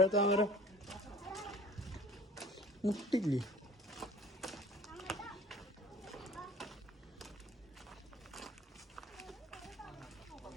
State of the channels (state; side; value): normal; both; correlation 0.46